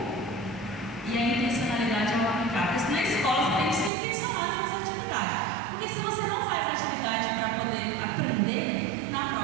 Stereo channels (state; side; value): drops out; left; at 3.9 s